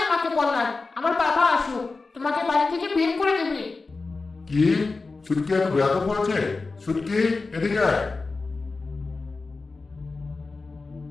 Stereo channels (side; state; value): right; quieter; 3.9 dB